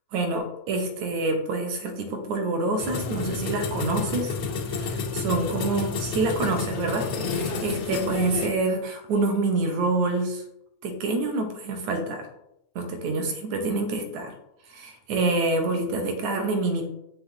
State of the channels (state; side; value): late; left; 9.1 ms